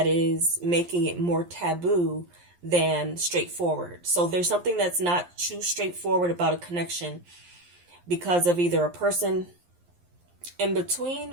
is making it more taboo than straightforward. So there's something that's not too straightforward about a connection because of either a person in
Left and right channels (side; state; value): left; late; 11 ms